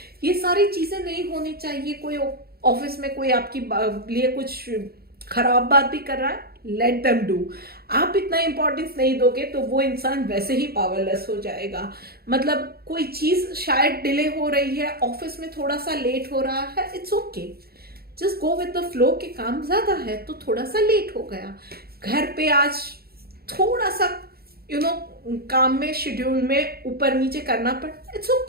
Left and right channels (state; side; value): late; left; 0.45 ms